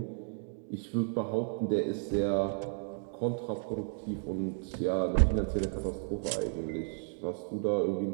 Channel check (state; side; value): silent; left; 56 dB below the other